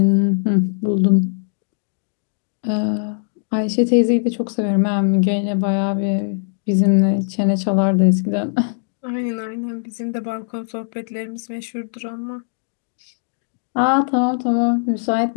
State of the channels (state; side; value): silent; right; digital silence